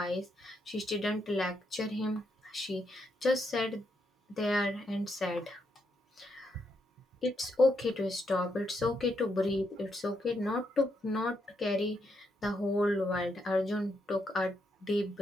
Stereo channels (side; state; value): both; normal; correlation 0.79